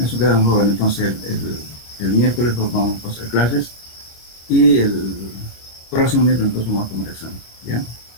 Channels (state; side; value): late; right; 26 ms